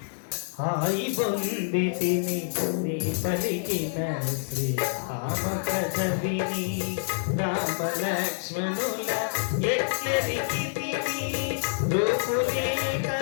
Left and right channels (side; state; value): right; silent; digital silence